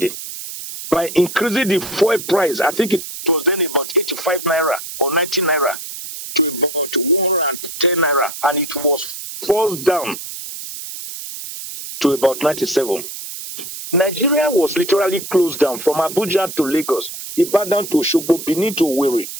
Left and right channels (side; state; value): right; noise; hiss, 10 dB below the sound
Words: by increasing the fuel price. I think it was then about 85 naira or 90 naira to about 110 naira, and it was forced down to about 97. Nigeria was literally closed down from Abuja to Lagos, Ibadan to Osogbo, Benin to Owerri,